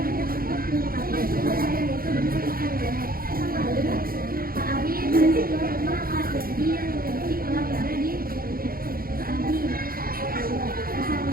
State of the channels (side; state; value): left; late; 0.42 ms